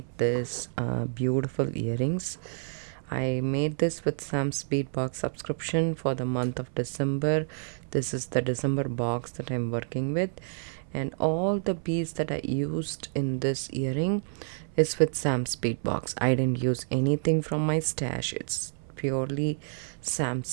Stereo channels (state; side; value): silent; left; 59 dB below the other